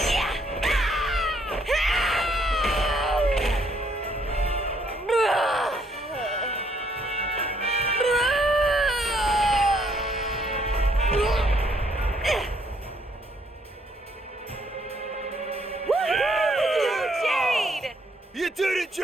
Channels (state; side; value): normal; both; correlation 0.68